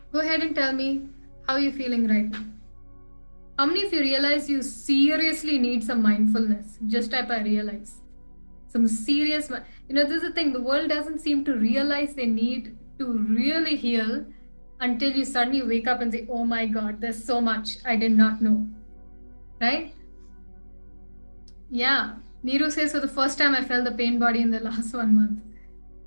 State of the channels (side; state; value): both; inverted; correlation -1.00